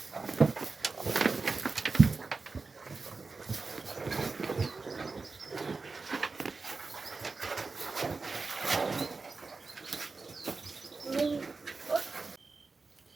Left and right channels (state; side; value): quieter; left; 4.1 dB